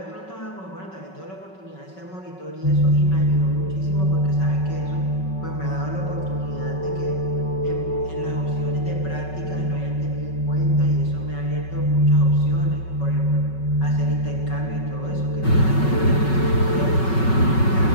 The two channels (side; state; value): right; late; 5.3 ms